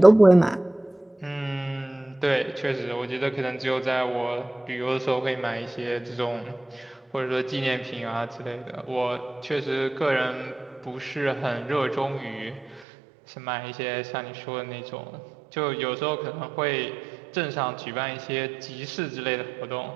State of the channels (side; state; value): left; drops out; at 12.8 s